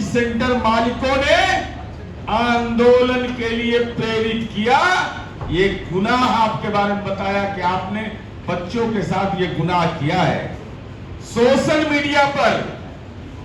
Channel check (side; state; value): both; identical; correlation 1.00